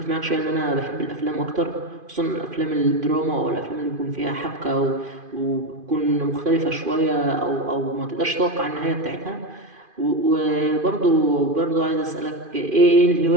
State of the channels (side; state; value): left; late; 2.5 ms